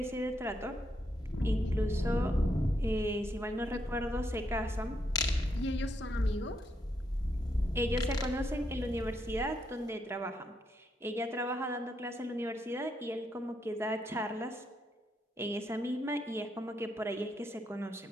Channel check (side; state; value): both; normal; correlation 0.79